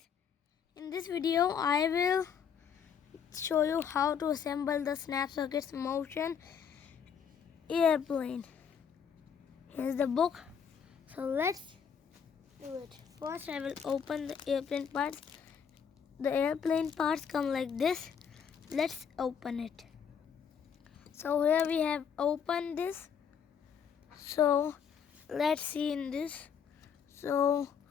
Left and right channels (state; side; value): quieter; right; 7.3 dB